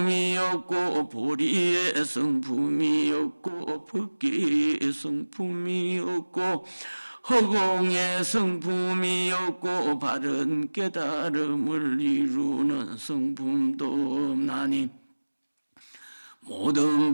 없고 보리의 성품이 없고 법계의 성품이 없고 허공의 성품이 없고 바른 깨달음을 이루는 성품도 없나니 모든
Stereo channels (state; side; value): inverted; both; correlation -1.00